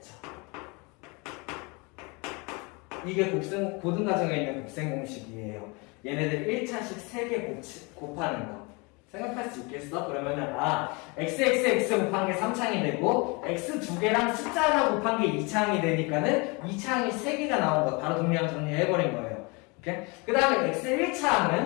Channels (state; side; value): quieter; right; 28.7 dB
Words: 이게 고등과정에 있는 곱셈 공식이에요. 얘네들 1차식 3개 곱하는 거. 생각할 수 있겠어? 그러면은 xxx 곱한 게 3창이 되고 x 두 개랑 숫자 하나 곱한 게 2창이 되니까는 2창이 3개가 나온 거 바로 동량 정리해버린 거예요. 오케이? 그 다음에 x